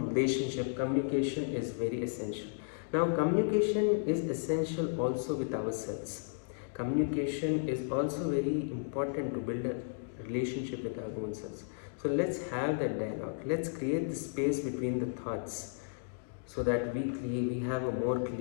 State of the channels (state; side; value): silent; right; digital silence